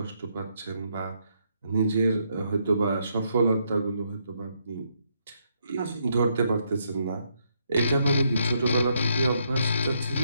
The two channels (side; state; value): both; inverted; correlation -0.75